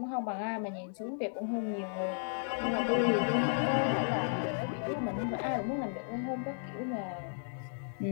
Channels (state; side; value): silent; right; digital silence